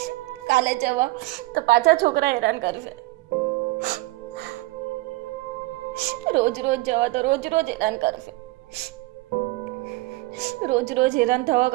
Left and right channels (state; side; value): quieter; left; 20.9 dB